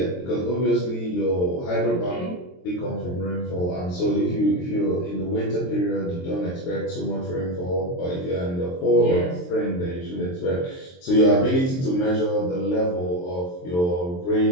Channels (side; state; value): right; late; 23 ms